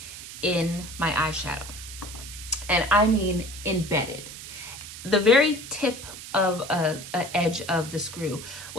in my eyeshadow. And I mean embedded. The very tip of an edge of the screw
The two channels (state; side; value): noise; right; hiss, 12 dB below the sound